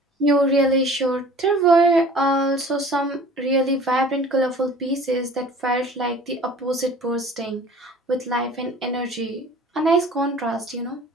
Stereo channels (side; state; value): both; normal; correlation 0.46